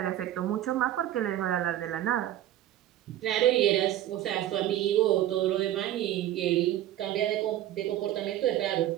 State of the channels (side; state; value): left; quieter; 12.9 dB